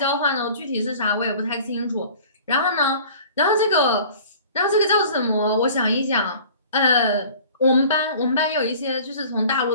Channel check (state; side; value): inverted; both; correlation -0.46